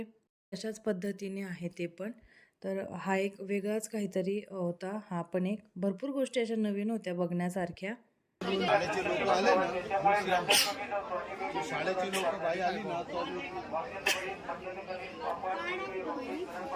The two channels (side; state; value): both; identical; correlation 1.00